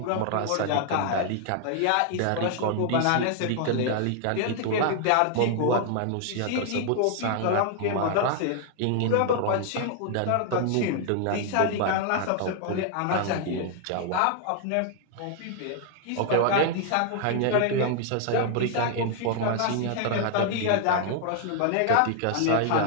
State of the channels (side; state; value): both; different; correlation 0.00